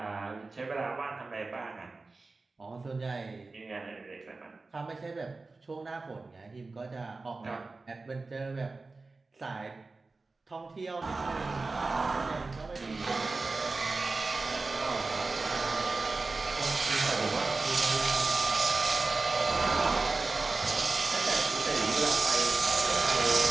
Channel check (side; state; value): left; quieter; 3.6 dB